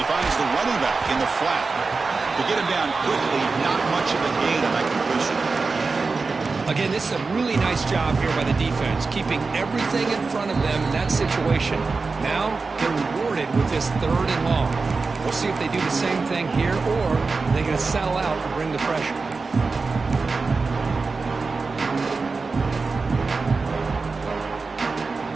finds the running back in the flat. To get him down quickly, not much of a gain on that completion. Again, this is a really nice job here by the defense, keeping everything in front of them in that situation. Now they're rewarded with this third and long. We'll see if they do the same thing here, or they're going to settle out and bring the pressure.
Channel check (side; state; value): left; quieter; 4.2 dB